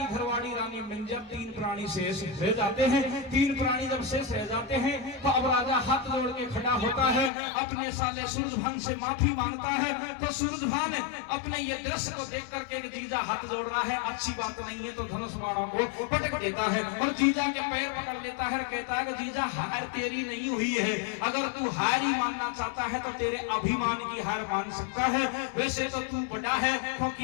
घरवाड़ी रानी मिंजर, तीन प्राणी शेष रह जाते हैं। तीन प्राणी जब शेष रह जाते हैं तो अब राजा हाथ जोड़ के खड़ा होता है, अपने साले सूरजभान से माफी मांगता है। तो सूरजभान अपने ये दृश्य को देख करके जीजा हाथ जोड़ रहा है, अच्छी बात नहीं है, तो धनुष बाणों को पटक देता है और जीजा के पैर पकड़ लेता है, कहता है कि जीजा हार तेरी नहीं हुई है, अगर तू हार ही मानना चाहता है तो तेरे अभिमान की हार मान सकता है। वैसे तो तू बड़ा है,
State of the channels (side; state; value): right; drops out; at 7.3 s